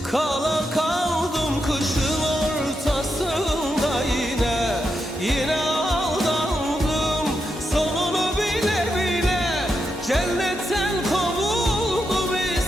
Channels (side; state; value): both; normal; correlation 0.85